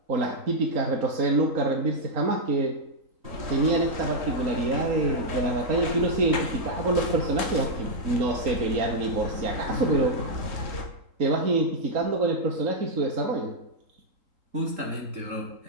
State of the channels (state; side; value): late; left; 3.8 ms